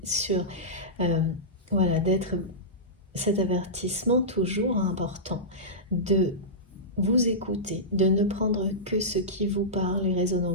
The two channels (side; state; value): both; normal; correlation -0.15